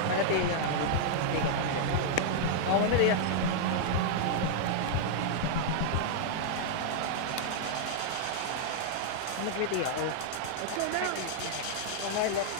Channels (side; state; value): both; different; correlation -0.01